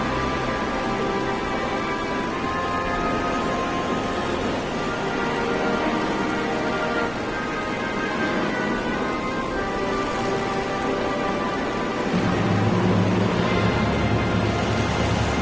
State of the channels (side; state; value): right; noise; rumble, 18 dB below the sound